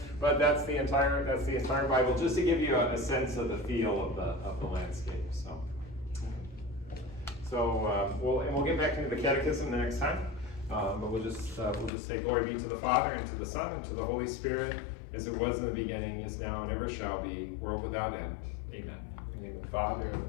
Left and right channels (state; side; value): drops out; right; at 11.9 s